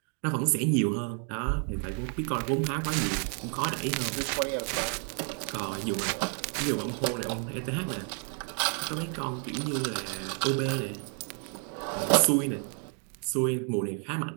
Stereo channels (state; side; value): quieter; left; 39.3 dB